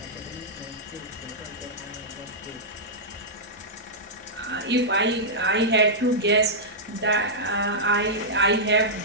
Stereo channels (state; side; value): normal; both; correlation -0.10